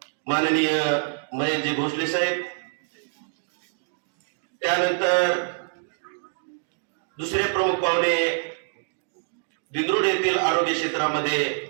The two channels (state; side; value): silent; left; digital silence